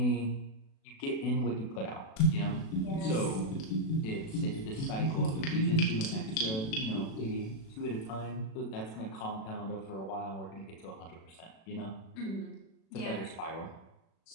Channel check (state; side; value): late; right; 36 ms